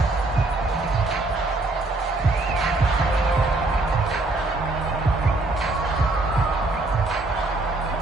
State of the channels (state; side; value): quieter; left; 3.0 dB